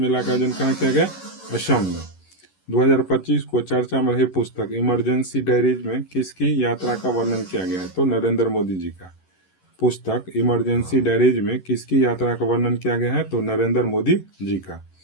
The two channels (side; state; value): right; late; 11 ms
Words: का आयोजन कहाँ किया गया? असम में। 2025 को चर्चा में रही पुस्तक इमरजेंसी डायरीज में किसकी यात्रा का वर्णन किया गया है? तो नरेंद्र मोदी जी का। पुस्तक इमरजेंसी डायरीज में किसकी यात्रा का वर्णन किया गया है? तो नरेंद्र मोदी जी का।